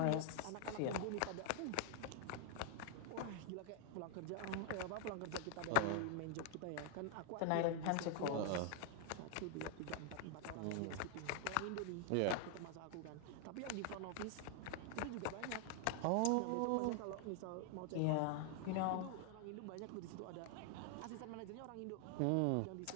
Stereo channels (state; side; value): different; both; correlation 0.00